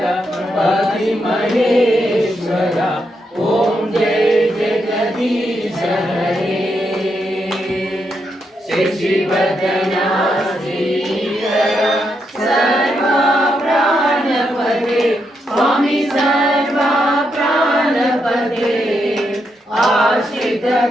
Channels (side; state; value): both; normal; correlation 0.81